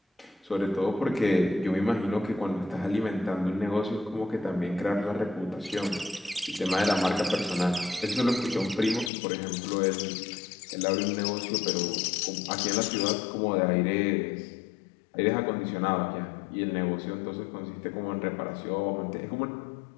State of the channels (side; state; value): right; drops out; at 9.1 s